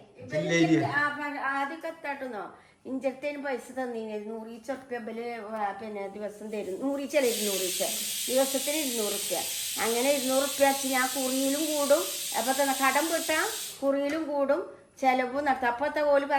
ആദ്യമൊക്കെ എത്താട്ടുന്നോ. ഇഞ്ചത്തേന് പൈസ തന്നീന് 100 ഉറുപ്പ്യ പിന്നെ ദിവസം തരും. 100 ദിവസത്തിന് 200 ഉറുപ്പ്യ. അങ്ങനെ 200 ഉറുപ്പ്യ വെച്ച് ഞാൻ കുറിയിലും കൂടും. അപ്പൊ തന്നെ കടം വിട്ടാ കുറിയിലും കൂടും, ചെലവും നടത്തും. അപ്പത്തെ പോലെ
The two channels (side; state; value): both; identical; correlation 1.00